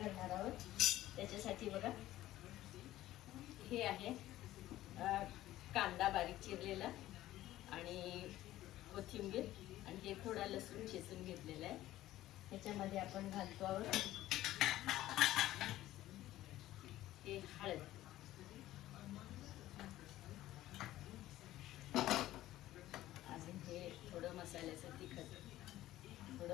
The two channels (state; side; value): quieter; right; 14.9 dB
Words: आहोत. त्याच्यासाठी बघा, हे आहे कांदा बारीक चिरलेला आणि कोथिंबीर, आणि हे थोडा लसूण चेचून घेतलेला आहे. ह्याच्यामध्ये आपण घालतो आहोत हे हळद, अजून हे थोडं मसाल्याचं तिखट,